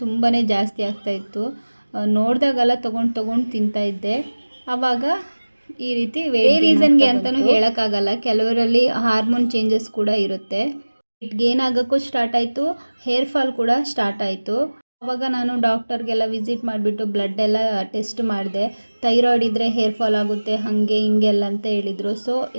ತುಂಬಾ ಜಾಸ್ತಿ ಆಗ್ತಾಯಿತ್ತು. ನೋಡಿದಾಗೆಲ್ಲ ತೊಗೊಂಡು ತಿಂತಾಯಿದ್ದೆ. ಆವಾಗ ಈ ರೀತಿ ರೀಸನ್ಗೆ ಅಂತಲೂ ಹೇಳೋಕ್ಕಾಗಲ್ಲ. ಕೆಲವರಲ್ಲಿ ಹಾರ್ಮೋನ್ ಚೇಂಜಸ್ ಕೂಡ ಇರುತ್ತೆ. ವೆಯ್ಟ್ ಗೇನ್ ಆಗೋಕ್ಕೂ ಸ್ಟಾರ್ಟ್ ಆಯಿತು, ಹೇರ್ ಫಾಲ್ ಕೂಡ ಸ್ಟಾರ್ಟ್ ಆಯಿತು. ಆವಾಗ ನಾನು ಡಾಕ್ಟರ್ಗೆಲ್ಲ ವಿಸಿಟ್ ಮಾಡಿಬಿಟ್ಟು ಬ್ಲಡ್ ಎಲ್ಲ ಟೆಸ್ಟ್ ಮಾಡಿದೆ. ಥೈರಾಯ್ಡ್ ಇದ್ದರೆ ಹೇರ್ ಫಾಲ್ ಆಗುತ್ತೆ ಹಾಗೆ ಹಿಂಗೆಲ್ಲ ಅಂತ ಹೇಳಿದರು. ಸೊ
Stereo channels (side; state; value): both; inverted; correlation -1.00